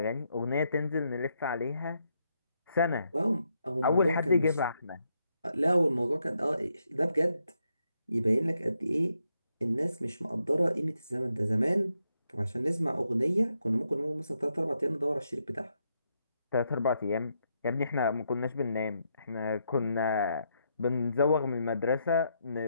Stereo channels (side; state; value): both; inverted; correlation -0.79